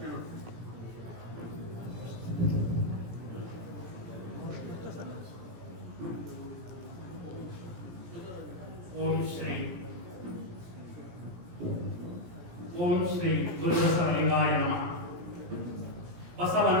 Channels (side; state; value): left; late; 17 ms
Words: ಓಂ ಶ್ರೀ ಗುರುಬಸವಲಿಂಗಾಯ ನಮಃ.